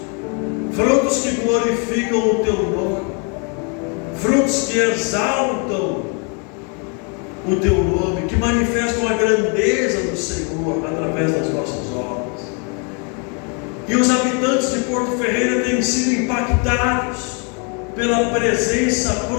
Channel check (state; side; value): quieter; right; 36.4 dB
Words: que glorificam o teu nome, frutos que exaltam o teu nome, que manifestam a grandeza do Senhor através das nossas obras. E os habitantes de Porto Ferreira têm sido impactados pela presença